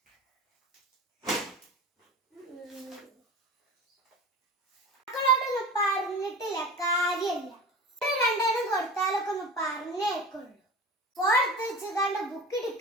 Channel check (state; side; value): normal; both; correlation 0.33